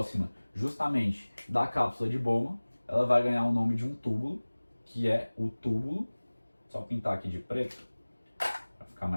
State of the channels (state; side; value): inverted; both; correlation -1.00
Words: justamente da cápsula de Bowman, ela vai ganhar o nome de um túbulo, que é o túbulo, só pintar aqui de preto, para ficar